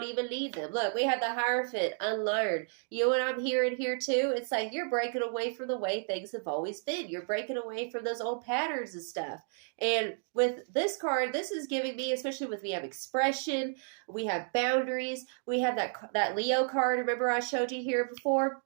even need them. Look, we have the Hierophant, unlearn. You know what I'm hearing here too? It's like you're breaking away from the way things have always been. You're breaking away from those old patterns and stuff. And with this card, this is giving me, especially with we have expression, we have boundaries, we have that Leo card. Remember I showed you here before?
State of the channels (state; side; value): silent; left; 57 dB below the other